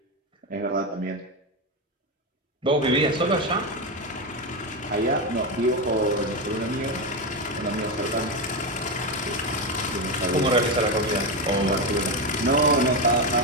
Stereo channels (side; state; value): both; normal; correlation 0.12